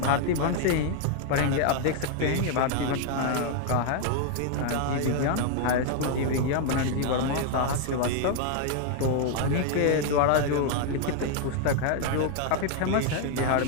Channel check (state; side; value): different; both; correlation 0.00